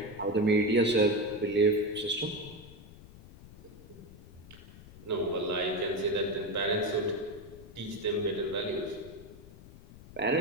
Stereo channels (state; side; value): noise; left; rumble, 19 dB below the sound